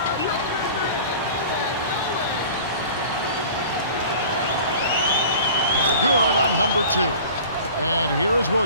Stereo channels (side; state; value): both; inverted; correlation -0.42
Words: Good on number 2. And here is